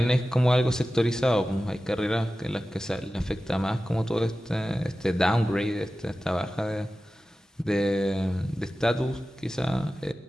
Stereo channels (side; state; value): both; normal; correlation 0.95